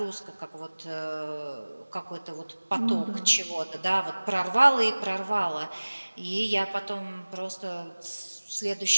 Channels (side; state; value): both; inverted; correlation -1.00